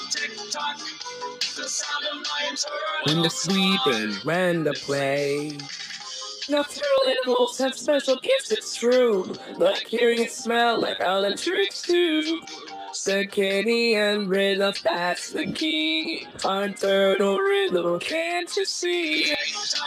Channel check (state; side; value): identical; both; correlation 1.00